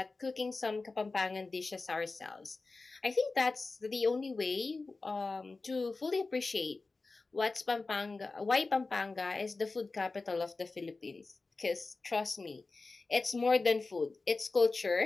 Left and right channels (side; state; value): right; quieter; 3.7 dB